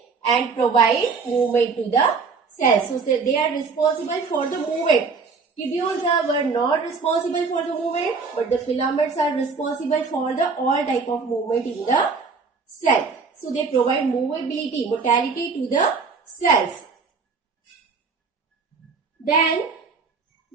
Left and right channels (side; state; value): left; quieter; 4.9 dB